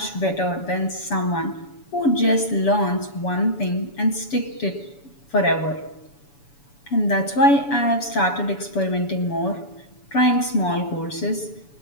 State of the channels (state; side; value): late; right; 7.0 ms